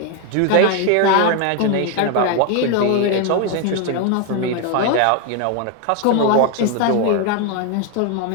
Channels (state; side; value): different; both; correlation 0.01